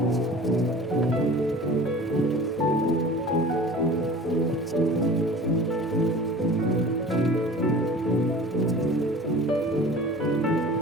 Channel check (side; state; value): both; normal; correlation 0.41